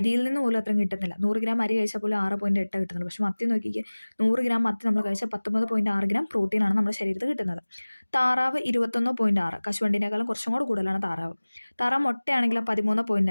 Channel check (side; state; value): both; inverted; correlation -1.00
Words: നിന്ന് പോലും അത്രയും കിട്ടുന്നില്ല. 100 ഗ്രാം അരി കഴിച്ചാൽ പോലും 6.8 കിട്ടുന്നുള്ളൂ. പക്ഷേ മത്തി നോക്കിക്കുക, 100 ഗ്രാം മത്തി നമ്മൾ കഴിച്ചാൽ 19.6 ഗ്രാം പ്രോട്ടീനാണ് നമ്മുടെ ശരീരത്തിൽ കിട്ടുന്നത്. താറാവ് 21.6. കശുവണ്ടിനേക്കാളും കുറച്ചും കൂടെ കൂടുതലാണ് താറാവ്. താറാവ് മുട്ടയാണെങ്കിൽ